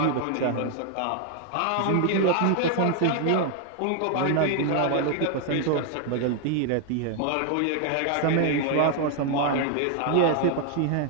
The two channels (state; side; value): different; both; correlation 0.00